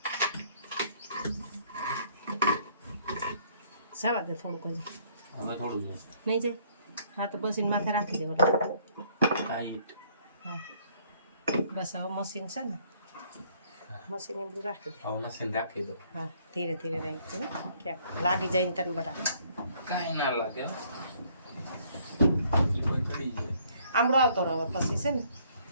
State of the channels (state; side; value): inverted; both; correlation -0.63